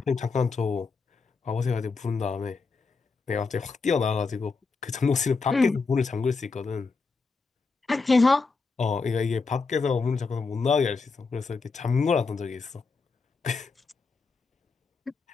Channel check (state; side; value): quieter; right; 4.4 dB